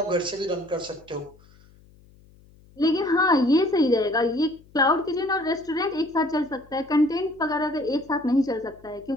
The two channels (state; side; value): noise; left; hum, 27 dB below the sound